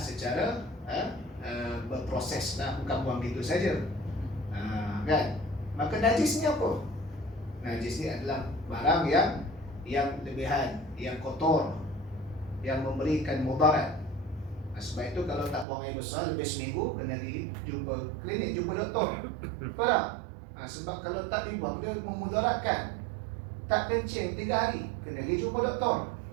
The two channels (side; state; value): left; drops out; at 15.7 s